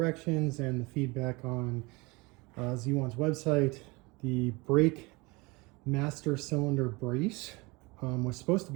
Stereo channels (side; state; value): left; quieter; 25.2 dB